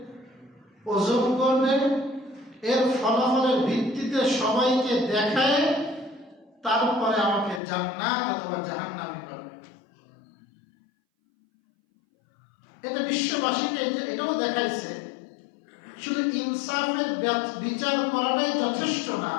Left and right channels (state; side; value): drops out; right; at 7.6 s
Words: ওজন করবে, এর ফলাফলের ভিত্তিতে সবাইকে দেখায় তারপরে আমাকে জান্নাত অথবা জাহান্নামে করবে। এটা বিশ্ববাসীকে এটাও দেখাইছে শুধু ইনসাফের বিচার করাটাই যথেষ্ট না,